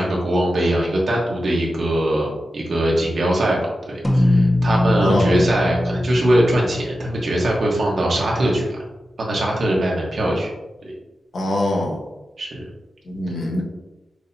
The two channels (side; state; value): both; normal; correlation 0.92